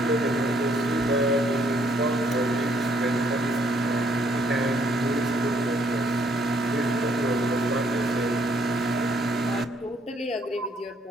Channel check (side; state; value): both; normal; correlation 0.67